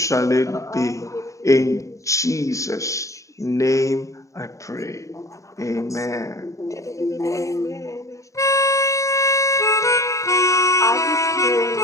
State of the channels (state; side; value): late; right; 0.15 ms